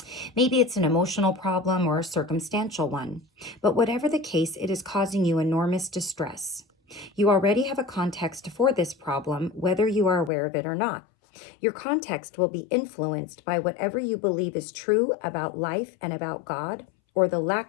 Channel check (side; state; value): right; drops out; at 10.3 s